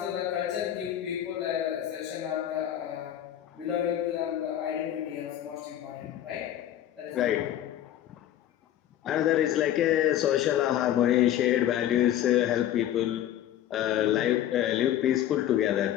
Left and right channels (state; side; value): quieter; right; 11.7 dB